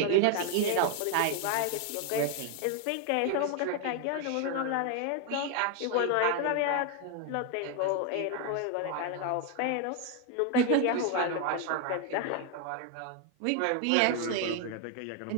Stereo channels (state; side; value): different; both; correlation 0.01